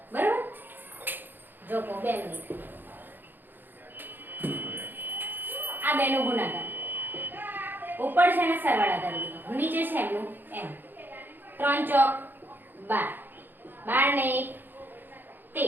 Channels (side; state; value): left; late; 0.093 ms